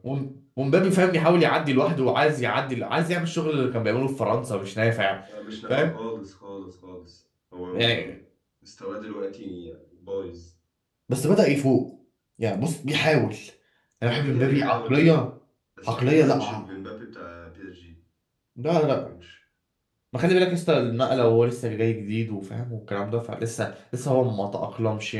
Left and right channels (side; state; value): both; identical; correlation 1.00